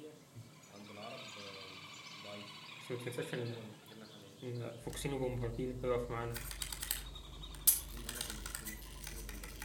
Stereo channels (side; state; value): both; identical; correlation 1.00